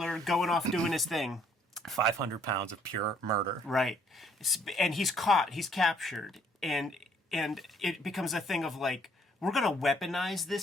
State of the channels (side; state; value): both; normal; correlation 0.64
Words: going off doing his thing. 500 pounds of pure murder. Right. And he's caught. He's captured. And it becomes a thing of like, we're going to weaponize